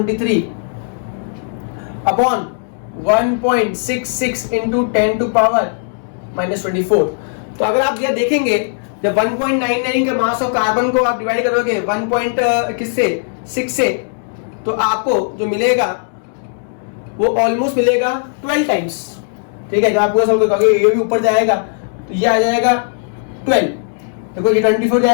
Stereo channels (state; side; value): silent; right; digital silence